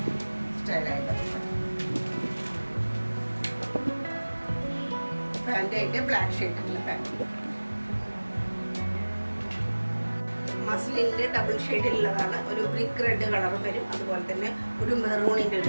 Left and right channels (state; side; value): inverted; both; correlation -1.00